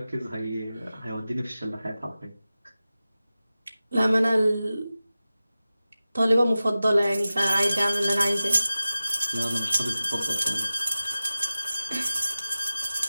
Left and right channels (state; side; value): inverted; both; correlation -0.95